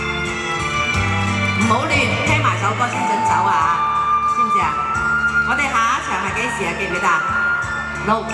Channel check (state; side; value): identical; both; correlation 1.00